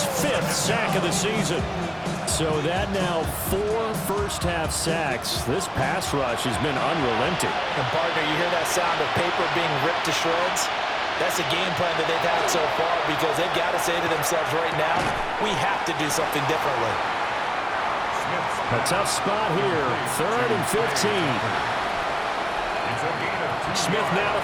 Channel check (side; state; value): both; identical; correlation 1.00